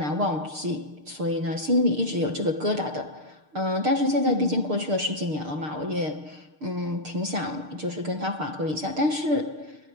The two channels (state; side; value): late; left; 6.6 ms